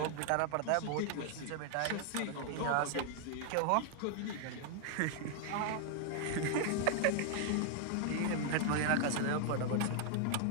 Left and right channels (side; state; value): both; different; correlation 0.00